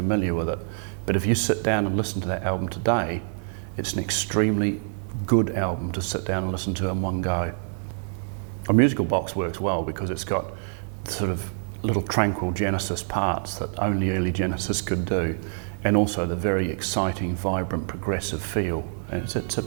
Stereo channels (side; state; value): left; silent; digital silence